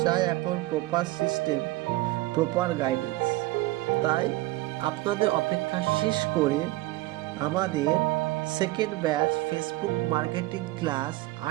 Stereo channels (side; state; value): left; quieter; 18.8 dB